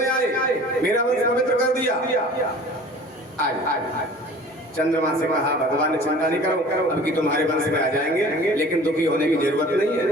आए, मेरा वंश पवित्र कर दिया। आज चंद्रमा से कहा भगवान ने चिंता नहीं करो, अब की तुम्हारे वंश में आ जाएंगे, लेकिन दुखी होने की जरूरत नहीं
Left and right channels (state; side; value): normal; both; correlation 0.45